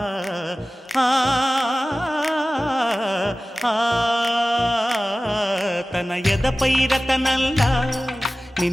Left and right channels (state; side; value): normal; both; correlation 0.97